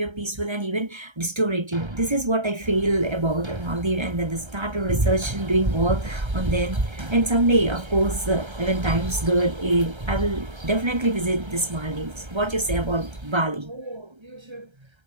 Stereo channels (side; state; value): left; late; 1.3 ms